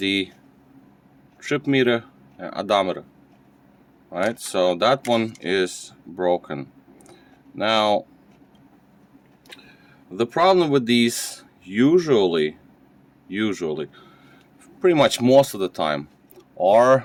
trip meter and odometer. Right, so that one is broken. Now the problem with these usually pretty much most of the time are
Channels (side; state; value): both; identical; correlation 1.00